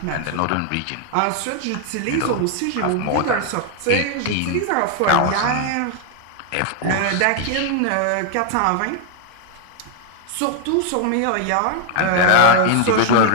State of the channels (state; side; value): different; both; correlation 0.00